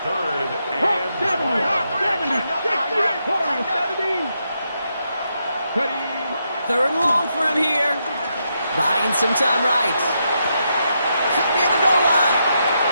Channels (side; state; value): both; inverted; correlation -0.81